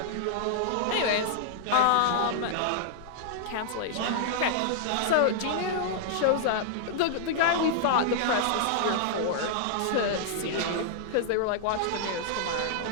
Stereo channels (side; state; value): both; different; correlation -0.01